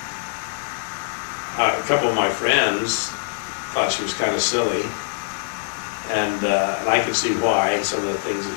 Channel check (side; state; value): right; silent; digital silence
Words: A couple of my friends thought she was kind of silly, and I could see why, some of the things that